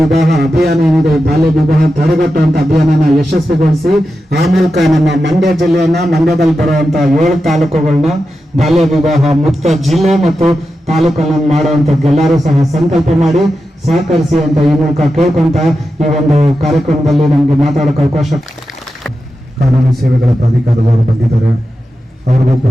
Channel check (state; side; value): normal; both; correlation 0.90